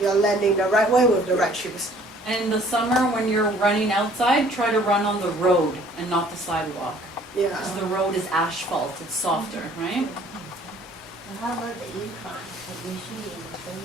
landing the right way with the right shoes. And in the summer, when you're running outside, try to run on the road and not the sidewalk. Yeah. Because the road is asphalt, it's softer, right? And how about the incline? Like usually in the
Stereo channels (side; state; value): both; normal; correlation 0.56